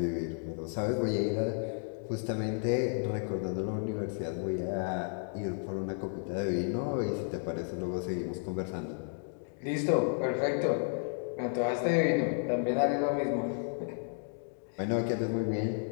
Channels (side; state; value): right; silent; 56 dB below the other